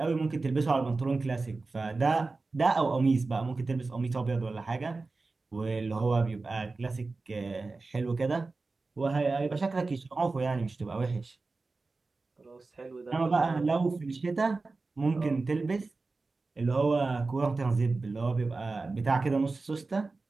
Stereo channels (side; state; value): left; quieter; 3.7 dB